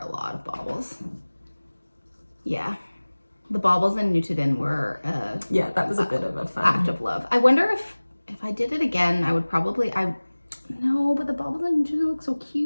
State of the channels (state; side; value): inverted; both; correlation -1.00